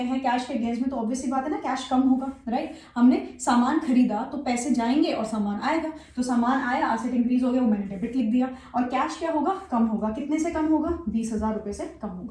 हैं कैश के अगेंस्ट में, तो ऑब्वियसली बात है ना, कैश कम होगा, राइट। हमने सामान खरीदा तो पैसे जाएंगे और सामान आएगा, तो सामान आया, असेट इंक्रीज हो गया, वो मैंने डेबिट लिख दिया। और कैश क्या होगा, कम होगा। कितने से कम होगा, 20,000 रुपए से कम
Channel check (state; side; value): identical; both; correlation 1.00